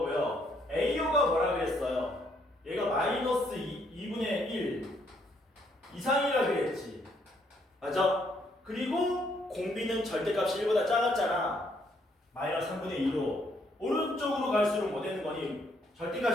AO가 뭐라 그랬어요? 얘가 마이너스 2분의 1 이상이라 그랬지. 맞아? 그리고 공비는 절대값이 1보다 작았잖아. 마이너스 3분의 2로 오른쪽으로 갈수록 뭐 되는 거니?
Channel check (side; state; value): both; normal; correlation 0.70